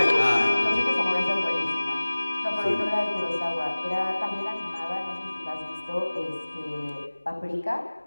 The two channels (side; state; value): both; inverted; correlation -1.00